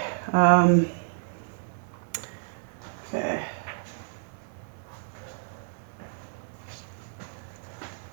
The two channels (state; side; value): silent; left; 58 dB below the other